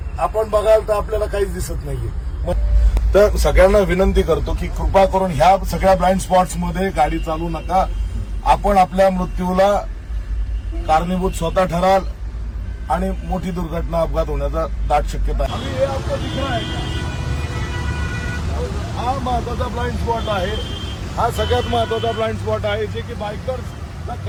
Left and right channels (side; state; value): both; identical; correlation 1.00